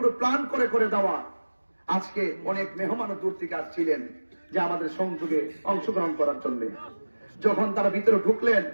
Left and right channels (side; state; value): both; inverted; correlation -1.00